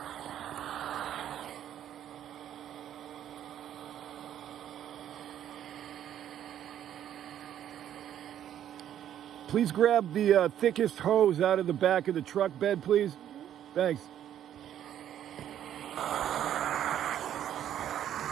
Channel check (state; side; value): quieter; left; 10.6 dB